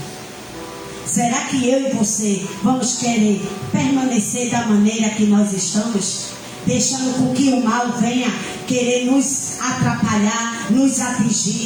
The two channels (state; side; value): identical; both; correlation 1.00